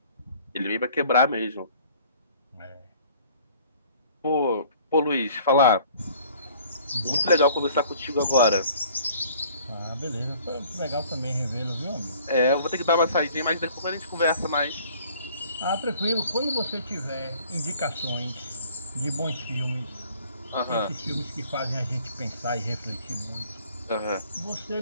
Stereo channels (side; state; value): both; inverted; correlation -0.53